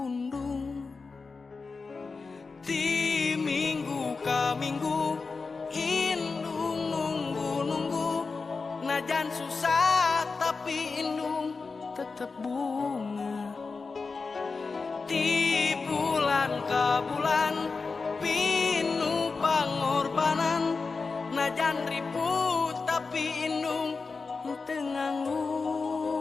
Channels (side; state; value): right; quieter; 4.4 dB